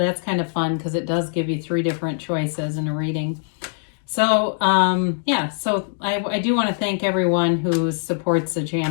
kind of fun because it does give you 3 different choices in a reading. So, I do want to thank everyone who supports the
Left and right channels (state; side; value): silent; right; digital silence